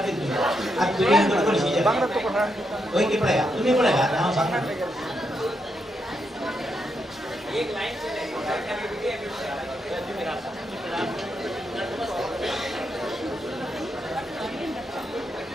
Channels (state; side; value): normal; both; correlation 0.81